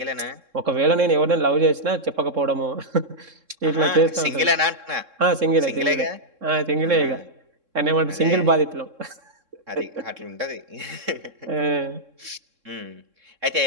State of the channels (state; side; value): late; left; 3.7 ms